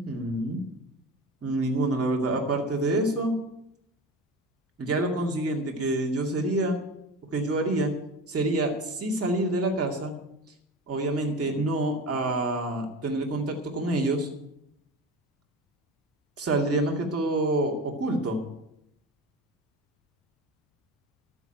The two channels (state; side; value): normal; both; correlation 0.31